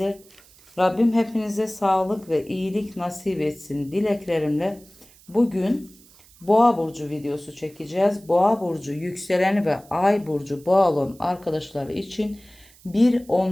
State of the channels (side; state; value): right; noise; hiss, 26 dB below the sound